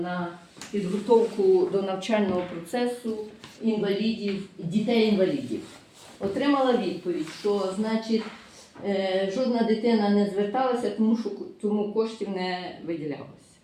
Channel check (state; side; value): identical; both; correlation 1.00